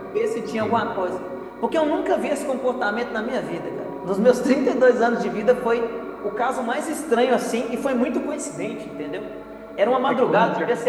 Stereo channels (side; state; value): both; identical; correlation 1.00